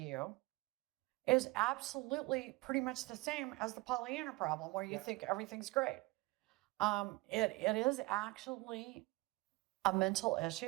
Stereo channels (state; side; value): quieter; left; 23.2 dB